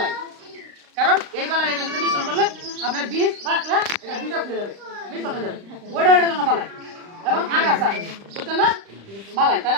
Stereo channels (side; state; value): left; late; 35 ms